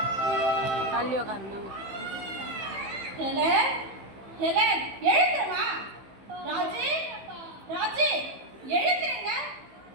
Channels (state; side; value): late; left; 15 ms